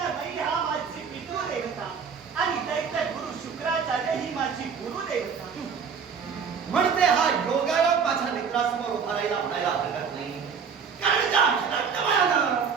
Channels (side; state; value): left; quieter; 6.3 dB